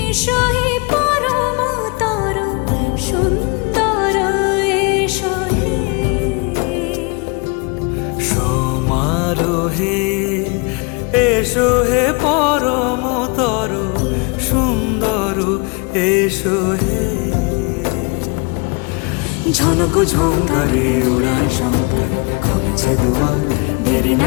এসো হে পরমতর সুন্দর, এসো হে সমারোহে, এসো হে পরমতর সুন্দর, এসো হে। ঝনক ঝঙ্কারে উড়ায় শঙ্কর, খুলেছে দুয়ার, দেরি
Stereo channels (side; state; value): right; quieter; 30.6 dB